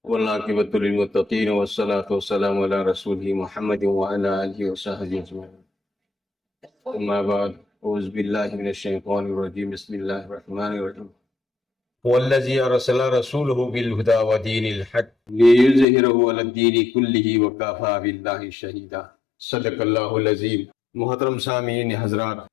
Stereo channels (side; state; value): right; drops out; at 15.9 s